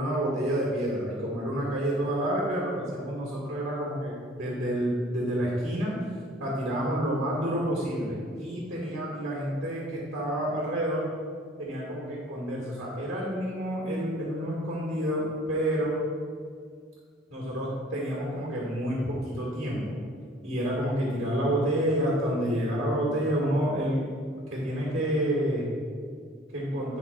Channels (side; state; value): both; normal; correlation 0.53